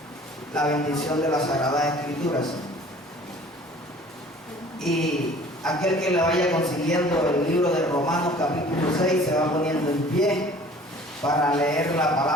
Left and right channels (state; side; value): normal; both; correlation 0.49